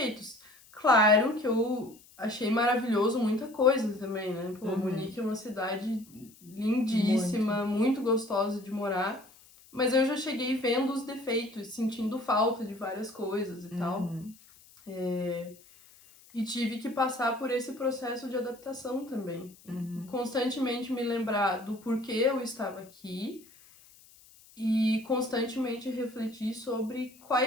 Claro que eu achei maravilhoso muita coisa também, né? Pô, Munique é uma cidade lindíssima, muito gostosa de morar. Mas eu já cheguei vendo os defeitos, sentindo falta de várias coisas e tal. Uhum. E tive que passar por esse processo de adaptação também. Uhum. Constantemente me lembrar do porquê eu estava aqui e constantemente refletir sobre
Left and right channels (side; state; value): left; noise; hiss, 25 dB below the sound